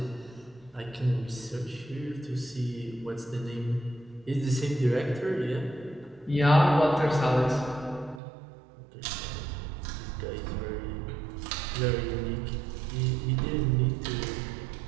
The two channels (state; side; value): drops out; left; at 8.2 s